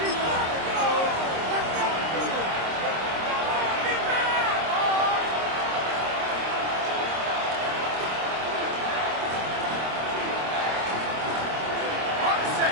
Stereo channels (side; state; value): left; late; 26 ms